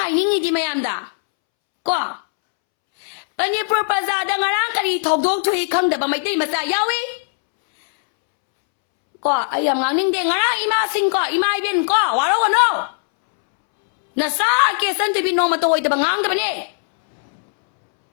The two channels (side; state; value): right; silent; 67 dB below the other